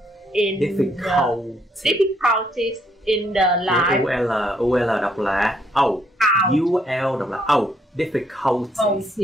in difficulties in the life. UL đọc là UL đọc là difficulties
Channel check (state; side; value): normal; both; correlation 0.71